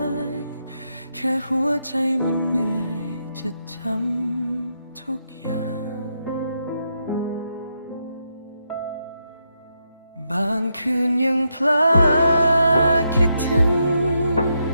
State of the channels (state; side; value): inverted; both; correlation -0.81